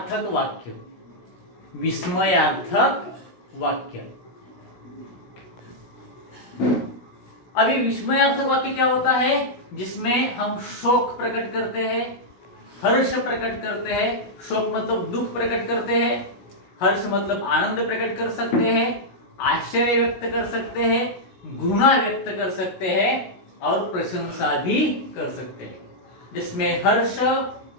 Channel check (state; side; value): late; right; 16 ms